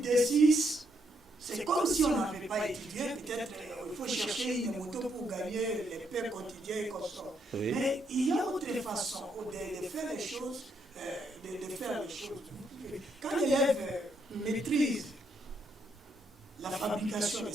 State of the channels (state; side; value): normal; both; correlation 0.76